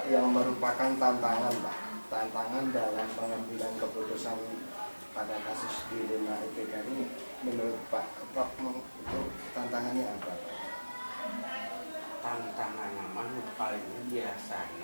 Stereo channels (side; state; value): both; inverted; correlation -1.00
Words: yang merupakan tantangan Pak? Tantangan dalam pengambilan keputusan pada kasus di Lima IPK ini menurut Pak itu tantangannya apa Pak? Tantangan memang paling